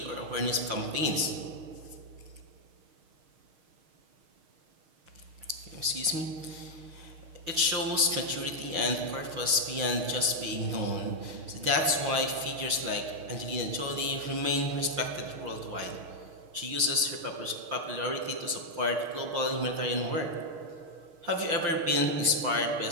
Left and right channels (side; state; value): left; late; 6.4 ms